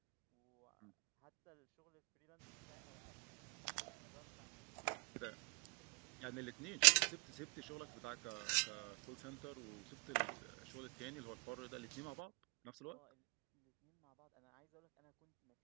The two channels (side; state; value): left; quieter; 34.6 dB